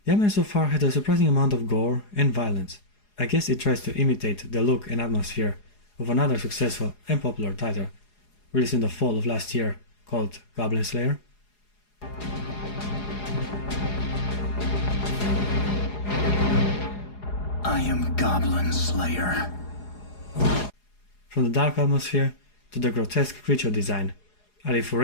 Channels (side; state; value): right; late; 4.8 ms